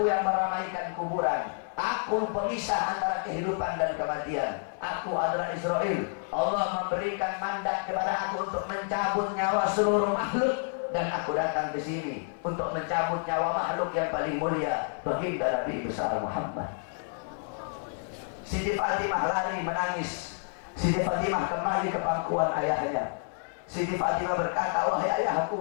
yang meramaikan kuburan, aku pemisah antara kehidupan dan kematian. Aku adalah Israel. Allah memberikan mandat kepada aku untuk mencabut nyawa seluruh makhluk, dan aku datang ke sini untuk mencabut nyawa makhluk yang paling mulia, baginda Nabi besar Muhammad. Siti Fatimah lari menangis. Siti Fatimah kembali ke pangkuan ayahnya. Siti Fatimah berkata, wahai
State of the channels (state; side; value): silent; right; 58 dB below the other